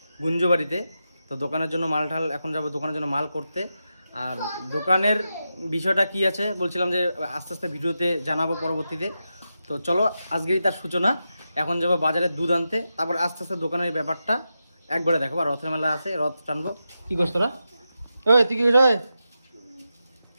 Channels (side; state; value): both; inverted; correlation -0.89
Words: গুঞ্জবাড়িতে। তো দোকানের জন্য মাল এখন যাবো দোকানের জন্য মাল করতে। আর দোকানের বিষয়টা কি আছে বলছিলাম যে আস্তে আস্তে ভিডিওতে জানাবো পরবর্তীতে। তো চলো, আজকেই তার সূচনা। এখন যাবো বাজারে দুধ আনতে, তারপর আস্তে আস্তে দোকানের ব্যাপারটা একবারে দেখো। আর রথের মেলা আছে, রথ টানবো। কি করছ তোরা? ওই তুই কি করছ